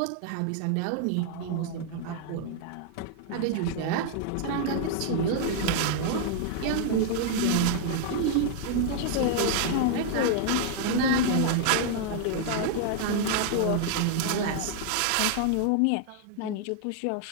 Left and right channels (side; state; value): both; different; correlation 0.00